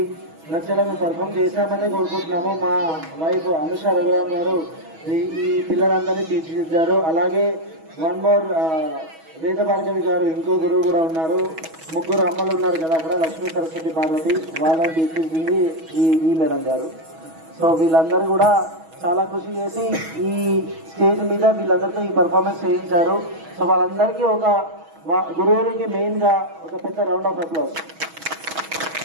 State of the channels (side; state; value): left; late; 6.2 ms